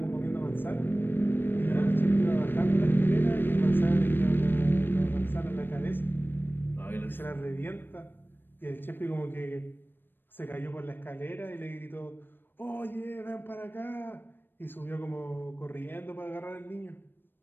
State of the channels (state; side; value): late; right; 0.096 ms